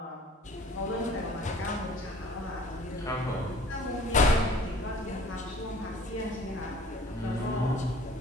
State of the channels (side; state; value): both; normal; correlation 0.51